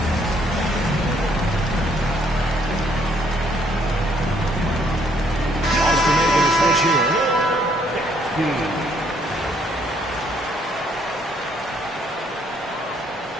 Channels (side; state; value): both; normal; correlation 0.67